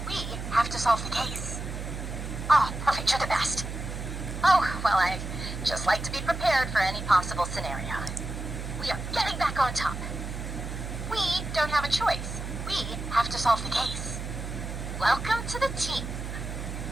We have to solve the case. Oh, perfect. You're the best. Oh, well, I just like to be prepared for any possible scenario. We are getting back on top. We don't have a choice. We have to solve the case. Welcome to the team.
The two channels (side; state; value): right; noise; hum, 6 dB below the sound